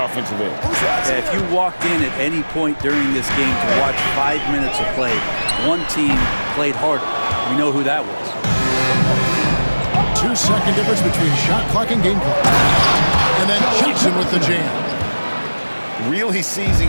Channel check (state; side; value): inverted; both; correlation -1.00